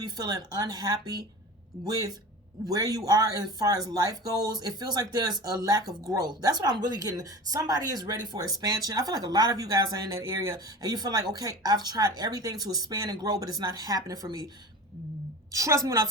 be feeling unhappy with where you are as far as life goes. It feels like there's a lack of growth. That's what I'm really getting. Somebody is ready for expansion. I feel like a lot of you guys are in that area and you feel like, okay, I've tried everything to expand and grow, but it's not happening for me. Trust me when I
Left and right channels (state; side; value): normal; both; correlation 0.34